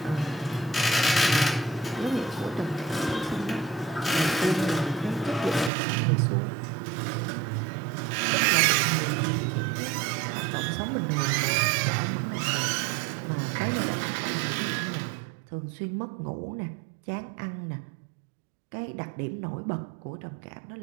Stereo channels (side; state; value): left; drops out; at 5.7 s